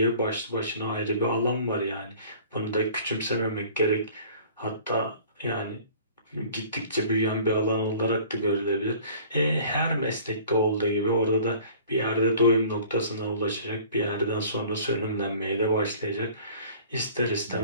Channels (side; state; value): both; inverted; correlation -0.48